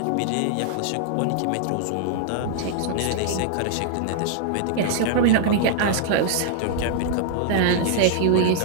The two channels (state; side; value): different; both; correlation -0.01